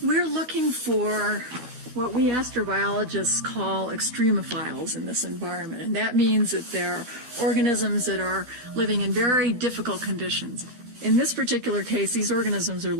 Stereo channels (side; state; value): left; late; 12 ms